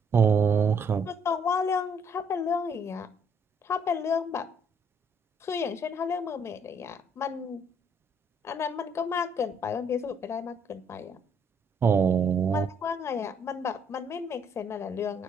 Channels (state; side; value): normal; both; correlation 0.67